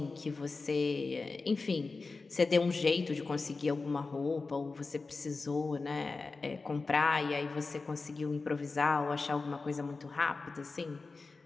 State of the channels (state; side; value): quieter; right; 4.0 dB